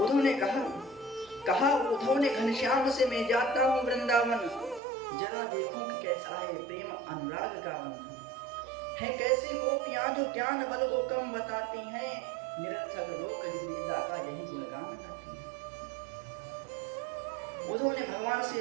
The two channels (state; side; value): drops out; left; at 4.8 s